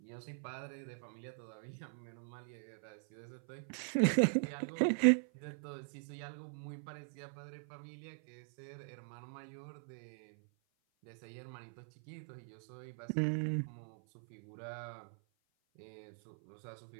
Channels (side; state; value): left; silent; 50 dB below the other